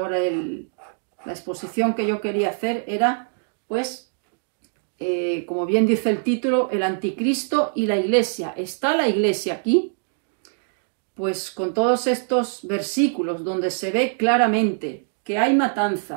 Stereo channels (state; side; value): silent; left; digital silence